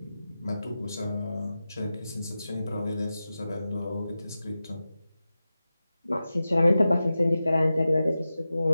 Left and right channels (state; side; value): inverted; both; correlation -0.94